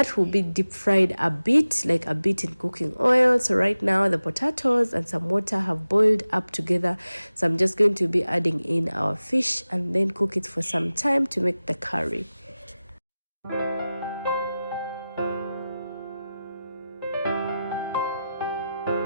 will be deep fried a bit, like a bit in cooking oil. So right now the potatoes and some water have boiled up together, so I'm just going to be adding in our fish and then cook it for some time to make the curry.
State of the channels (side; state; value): both; inverted; correlation -0.95